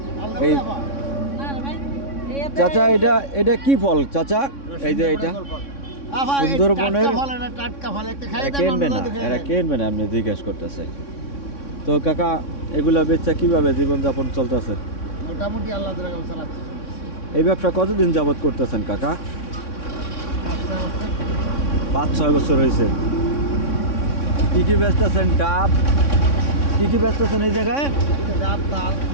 এই চাচা এটা কি ফল চাচা? এই যে এটা সুন্দরবনের কিনবেন আপনি জিজ্ঞেস করতেছে। তো কাকা এগুলা বেচা কিভাবে জীবনযাপন চলতেছে? মোটামুটি আল্লাহ চালাচ্ছে। এই ব্যবসা কতদিন যাবত করতেছেন কাকা? 5-6 বছর হয়েছে। কি কি বেচতেছেন? ডাব কি কি বেচতেছেন এই জায়গায়?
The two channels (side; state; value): right; late; 3.6 ms